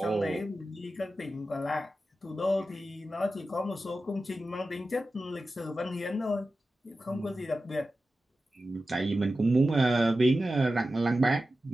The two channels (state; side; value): normal; both; correlation 0.93